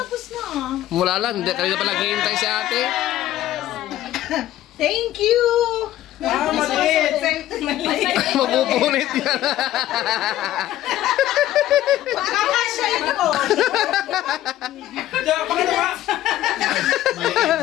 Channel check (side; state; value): right; quieter; 13.7 dB